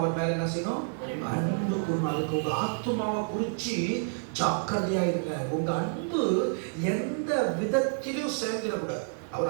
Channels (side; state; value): left; silent; 59 dB below the other